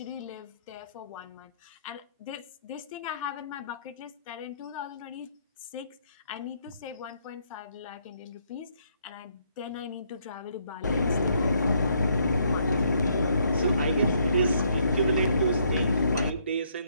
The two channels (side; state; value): both; inverted; correlation -0.70